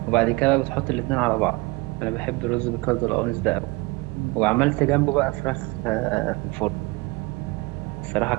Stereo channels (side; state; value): left; quieter; 24.3 dB